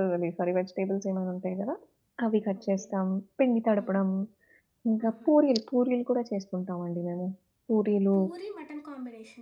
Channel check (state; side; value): identical; both; correlation 1.00